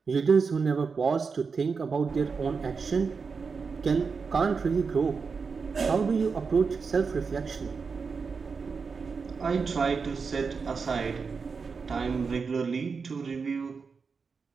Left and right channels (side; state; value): left; quieter; 5.2 dB